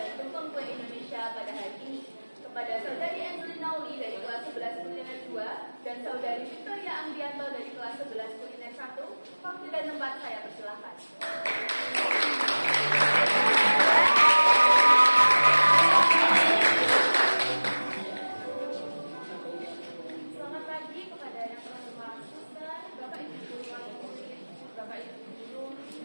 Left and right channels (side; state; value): both; inverted; correlation -1.00